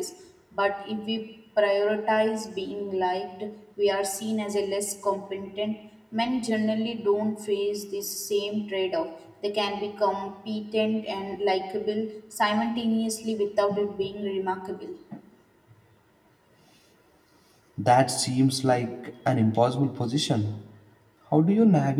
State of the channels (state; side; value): identical; both; correlation 1.00